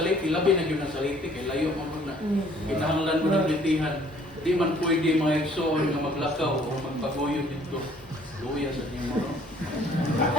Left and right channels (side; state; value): both; normal; correlation 0.58